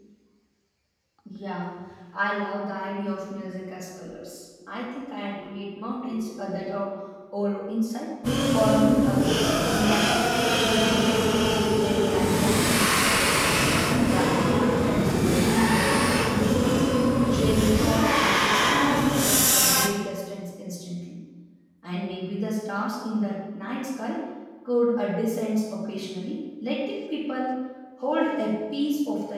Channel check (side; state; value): both; identical; correlation 1.00